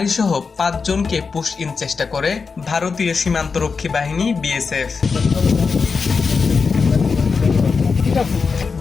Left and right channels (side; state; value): right; quieter; 5.0 dB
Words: সহ ৫ জনকে পুশ ইন চেষ্টা করে ভারতীয় সীমান্তরক্ষী বাহিনী বিএসএফ।